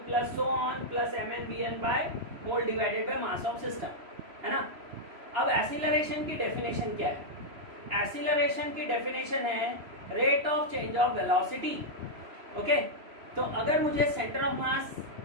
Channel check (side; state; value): left; late; 3.0 ms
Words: plus so on plus mnvn by whole divided by mass of system, है ना। अब एक्सीलरेशन की डेफिनेशन क्या है, एक्सीलरेशन की डेफिनेशन है rate of change of velocity. Okay, तो अगर मुझे सेंटर ऑफ मास